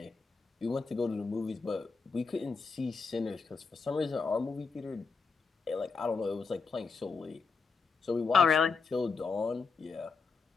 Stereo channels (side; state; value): right; quieter; 4.7 dB